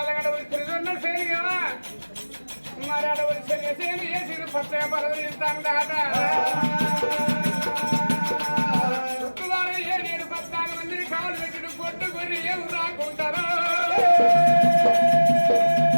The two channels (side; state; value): both; inverted; correlation -1.00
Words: గడవలు తిరుగున్న సేనిగా మరి అడవులు సేని వేసి పచ్చగా పరవలు ఇస్తాను దాట ఏడేడు 14 మంది కాలు పెట్టుడు కొట్టుకొని ఏం రాకుంటారో